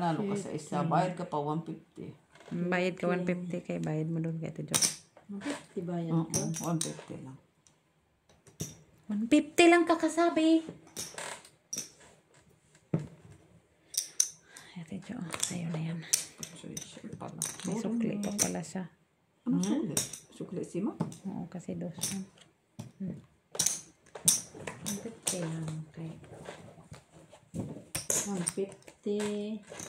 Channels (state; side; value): identical; both; correlation 1.00